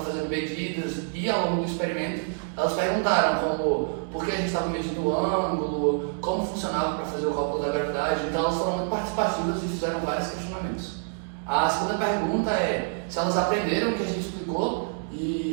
fazendo medidas e ao longo do experimento, elas perguntaram como, por que a gente estava medindo o ângulo, como funcionava para fazer o cálculo da gravidade. Então, elas foram muito participativas e fizeram vários questionamentos. A segunda pergunta é se elas aprenderam o que a gente explicou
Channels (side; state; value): left; silent; 60 dB below the other